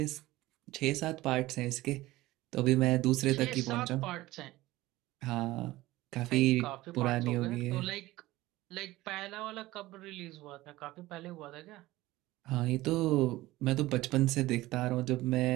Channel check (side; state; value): left; quieter; 17.9 dB